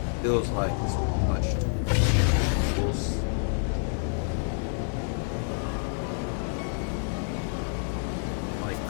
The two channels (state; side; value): silent; right; 59 dB below the other